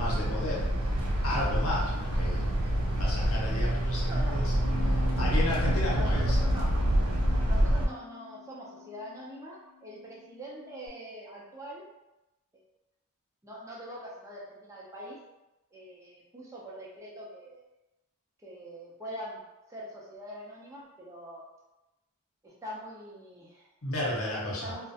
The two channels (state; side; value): normal; both; correlation 0.79